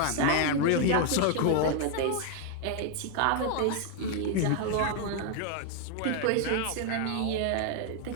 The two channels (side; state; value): both; different; correlation 0.00